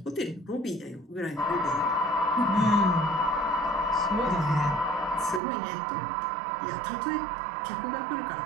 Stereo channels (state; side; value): drops out; left; at 5.4 s